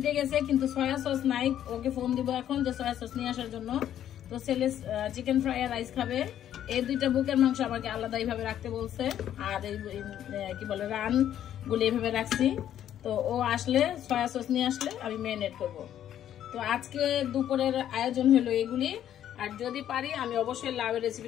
গেছে, কিন্তু সয়া সস নাই। ওকে ফোন দিব এখন যে সয়া সস নিয়ে আসার জন্য। তো ছেলে চিকেন ফ্রাই আর রাইস খাবে। এই 2টা বুকের মাংস আমাকে আলাদা এইভাবে রাখতে বলছে। আর এই কি বলে রান গুলি এইভাবে রাখছি। তো ও আসলে সয়া সস নিয়ে আসলে আমি ম্যারিনেট করব। তো আজকে দুপুরের আয়োজন হলো এগুলি। আর যদি পারি আমি অবশ্যই লাউয়ের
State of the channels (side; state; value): right; quieter; 10.8 dB